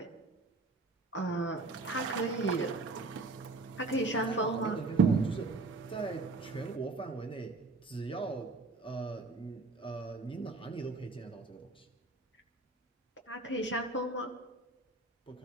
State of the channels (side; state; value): left; quieter; 3.3 dB